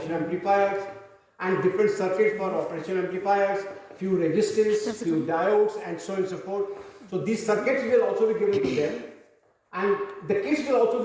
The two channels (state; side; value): identical; both; correlation 1.00